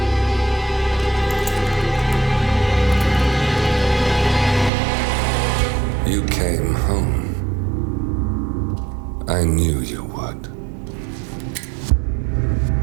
You came home. I knew you would.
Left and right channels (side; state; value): left; drops out; at 4.7 s